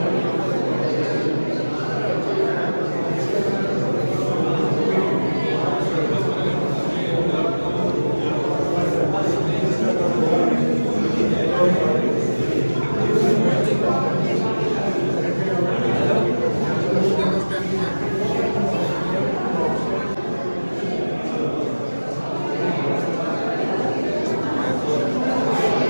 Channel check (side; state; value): both; inverted; correlation -1.00